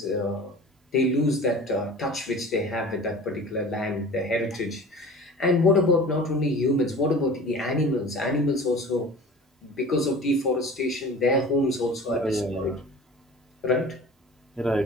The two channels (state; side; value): normal; both; correlation 0.40